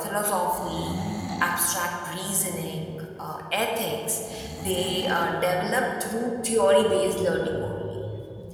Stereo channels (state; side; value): identical; both; correlation 1.00